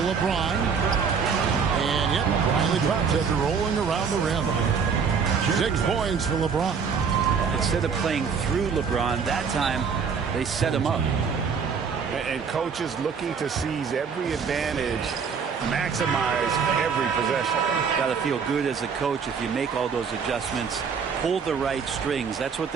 LeBron. And yep, finally drops after rolling around the rim. 6 points for LeBron. Instead of playing through LeBron, that time they set him up. And coaches looking to seize every advantage, maximize every possession. Got to feel good as a coach if you make all those adjustments, pull the right strings. That's what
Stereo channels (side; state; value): left; quieter; 6.1 dB